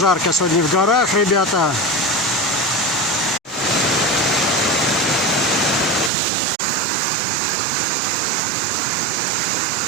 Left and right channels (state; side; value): drops out; left; at 6.1 s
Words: сегодня в горах, ребята.